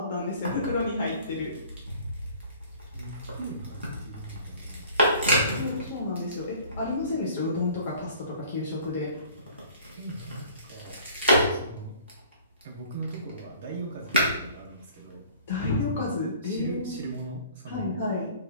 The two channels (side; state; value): both; inverted; correlation -0.51